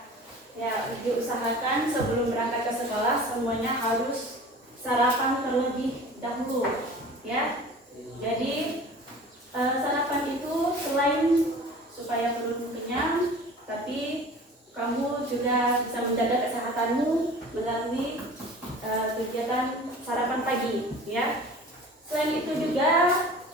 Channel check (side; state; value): both; normal; correlation 0.42